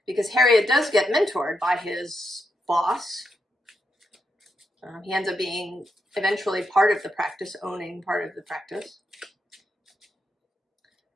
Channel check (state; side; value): normal; both; correlation 0.83